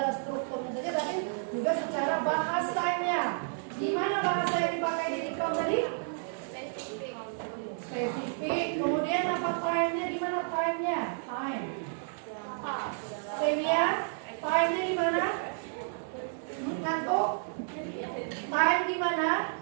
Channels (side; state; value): left; silent; digital silence